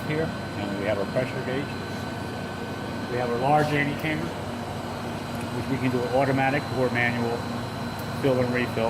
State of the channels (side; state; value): both; identical; correlation 1.00